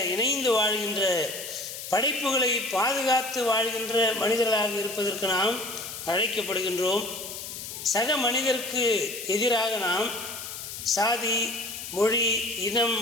இணைந்து வாழ்கின்ற படைப்புகளை பாதுகாத்து வாழ்கின்ற மனிதர்களாக இருப்பதற்கு நாம் அழைக்கப்படுகின்றோம். சக மனிதருக்கு எதிராக நாம் சாதி, மொழி, இனம்,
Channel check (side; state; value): left; noise; hiss, 9 dB below the sound